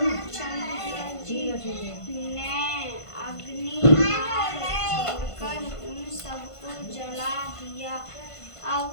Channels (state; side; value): late; right; 1.5 ms